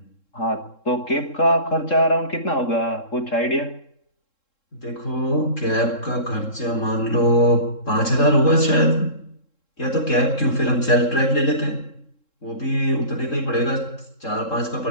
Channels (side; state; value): right; late; 3.7 ms